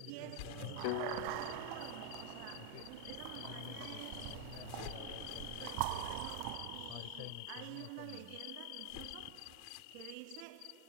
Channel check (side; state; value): both; different; correlation 0.01